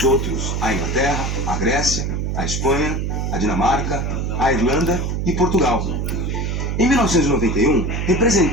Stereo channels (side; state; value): right; noise; hum, 1 dB below the sound